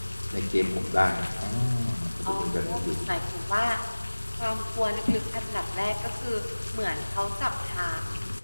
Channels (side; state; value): both; inverted; correlation -1.00